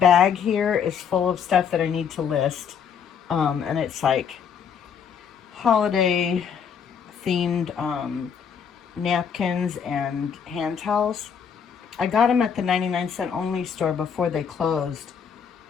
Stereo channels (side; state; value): right; quieter; 7.3 dB